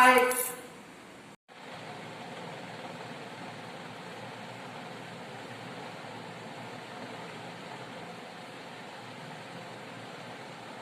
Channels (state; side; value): identical; both; correlation 1.00